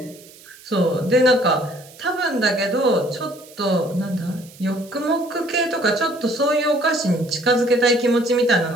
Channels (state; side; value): noise; right; hiss, 22 dB below the sound